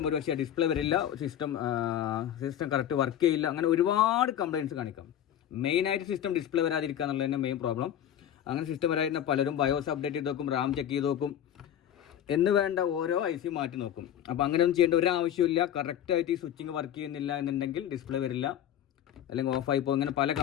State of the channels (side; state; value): right; quieter; 10.5 dB